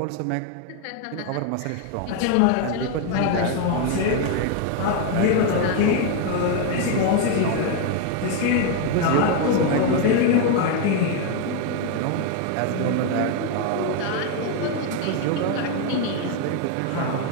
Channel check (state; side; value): different; both; correlation 0.01